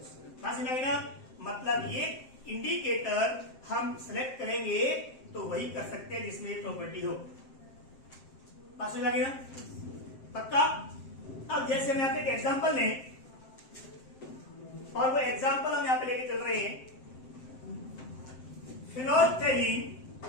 समझ में आई ना? मतलब ये इंडिकेटर हम सिलेक्ट करेंगे तो वही कर सकते हैं जिसमें ये प्रॉपर्टी हो। बात समझ लगी ना? पक्का? अब जैसे हम यहाँ पे एक एग्जाम्पल लें, और वो एग्जाम्पल हम यहाँ पे लेके चल रहे हैं, फिनोल्फथालीन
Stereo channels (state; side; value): late; right; 7.7 ms